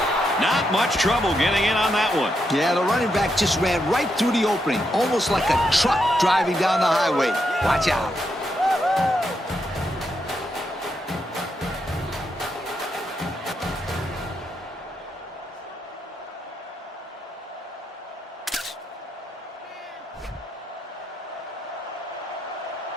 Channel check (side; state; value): both; normal; correlation 0.82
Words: Not much trouble getting in on that one. Yeah, the running back just ran right through the opening, almost like a truck driving down the highway. Watch out.